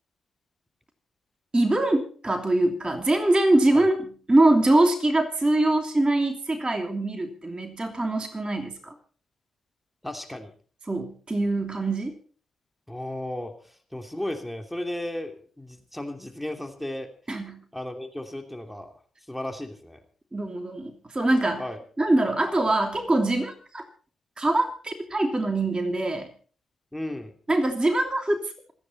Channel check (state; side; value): normal; both; correlation 0.95